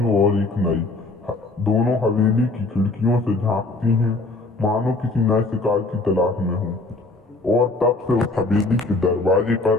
और एक नई। दोनों हवेली की खिड़कियों से झांकती हैं, मानो किसी नए शिकार की तलाश में हो। और तब से उस हवेली के दरवाजे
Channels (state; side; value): quieter; right; 3.2 dB